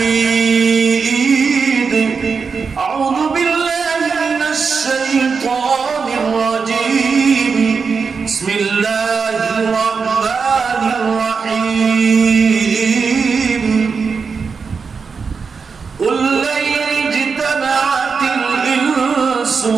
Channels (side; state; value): left; quieter; 5.3 dB